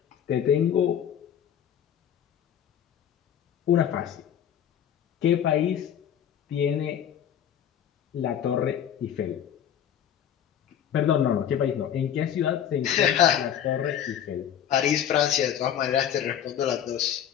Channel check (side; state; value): right; quieter; 9.6 dB